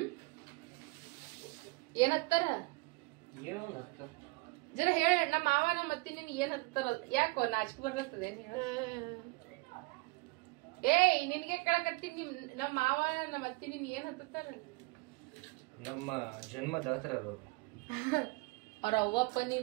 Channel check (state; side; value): quieter; left; 25.3 dB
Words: ಏನ್ ಹತ್ತಾರ ಜರ ಹೇಳ. ನಮ್ಮ ಮಾವ ನಮ್ಮ ಅತ್ತಿ ನಿನ್ ಏನ್ ಹತ್ತಾರ ಯಾಕೋ ನಾಚಿಕೆ ಬರ್ತದ ಏನ್ ಹೇಳ. ನಿನ್ಗೆ ಕೇಳಕತ್ತೀನಿ ನಮ್ಮ ಮಾವ ನಮ್ಮ ಅತ್ತಿ ನಿನ್ ಏನ್ ಹತ್ತಾರ ನಮ್ಮ ಜನ್ಮದಾತರ ಅವ್ರ ಅವ್ವಪ್ಪ